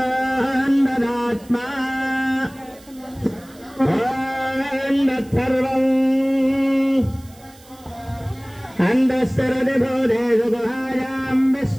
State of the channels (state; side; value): noise; right; hiss, 25 dB below the sound